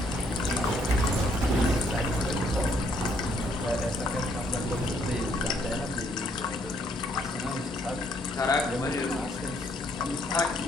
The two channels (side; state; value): both; normal; correlation 0.68